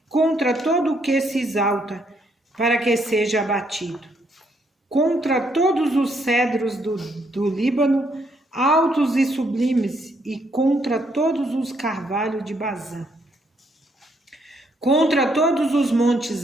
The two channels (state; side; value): normal; both; correlation 0.72